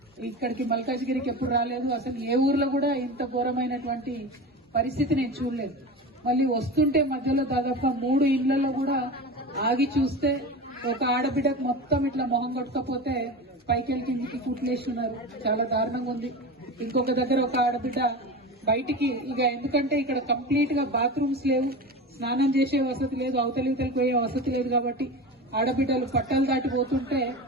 ఇక్కడికి మల్కాజ్గిరికి ఎప్పుడు రాలేదు, అసలు ఏ ఊర్లో కూడా ఇంత ఘోరమైనటువంటి పరిస్థితి నేను చూడలేదు. మళ్ళీ వస్తుంటే మధ్యలో దాదాపుగా 3 ఇళ్లలో కూడా ఆగి చూస్తే ఒక ఆడబిడ్డకు మొత్తం ఇట్లా మొహం కొట్టకపోతే పైకెళ్ళి కిందికి కుట్లేసి ఉన్నారు. చాలా దారుణంగా ఉంది. ఇంకొక దగ్గర ఒక ఆడబిడ్డ బయటికి ఇక ఎందుకంటే ఇక్కడ కంప్లీట్ గా బాత్రూమ్స్ లేవు, స్నానం చేసే వసతి లేదు, అవతలితలకు పోయే వసతి లేదు. కాబట్టి ఆడబిడ్డలు పట్టాలు దాటిపోతుంటే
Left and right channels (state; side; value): normal; both; correlation 0.28